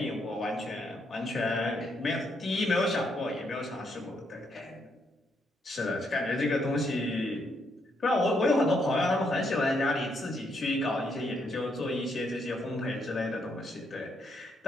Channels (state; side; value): normal; both; correlation 0.76